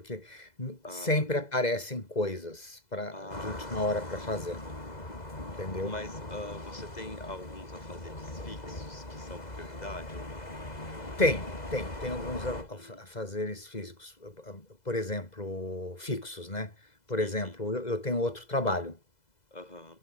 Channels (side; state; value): right; late; 2.0 ms